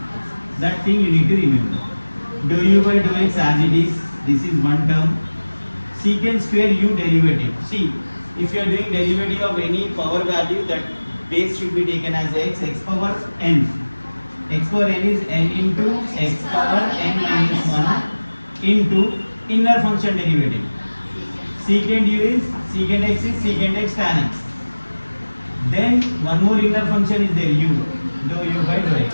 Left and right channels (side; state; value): both; inverted; correlation -1.00